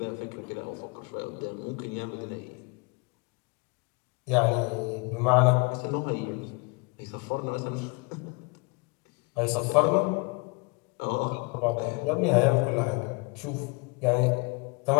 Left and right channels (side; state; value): right; quieter; 30.2 dB